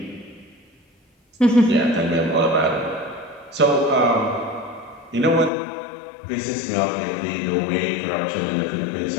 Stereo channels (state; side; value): drops out; right; at 5.5 s